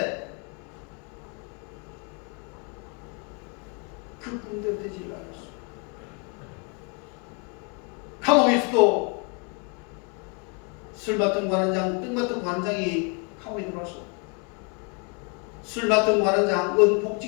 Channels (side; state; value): right; quieter; 36.1 dB